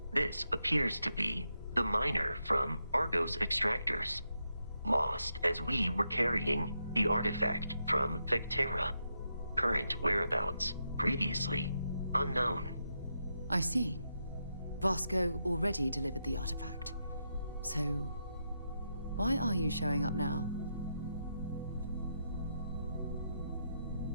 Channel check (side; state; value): both; inverted; correlation -0.83